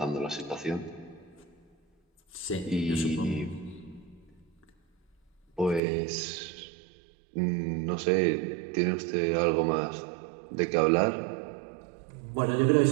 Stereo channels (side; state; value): left; drops out; at 5.8 s